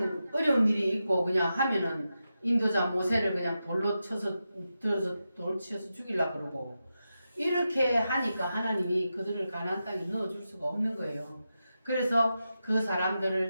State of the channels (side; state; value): both; inverted; correlation -0.89